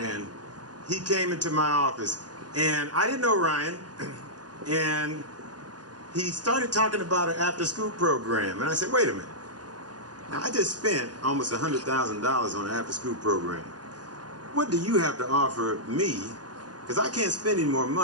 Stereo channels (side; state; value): left; late; 0.69 ms